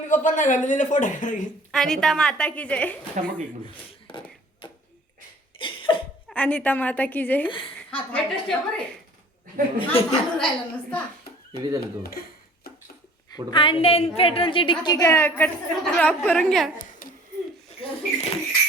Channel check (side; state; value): both; normal; correlation 0.50